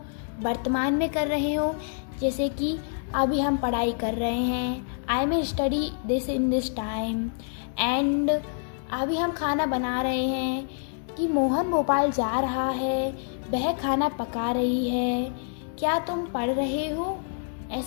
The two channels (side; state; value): right; silent; digital silence